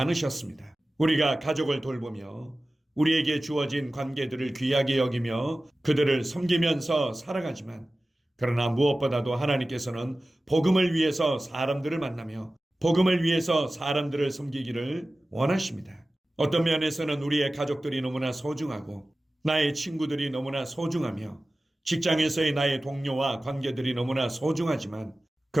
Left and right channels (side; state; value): both; normal; correlation 0.96